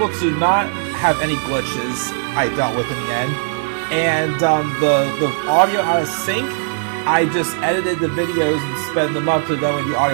to not have any glitches I dealt with in the end. And the audio out of sync, I just edited the videos and sped them up so that way the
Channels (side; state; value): left; silent; digital silence